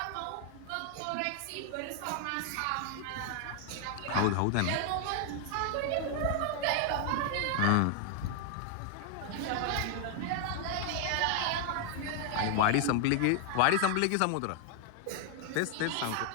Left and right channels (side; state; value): both; different; correlation 0.00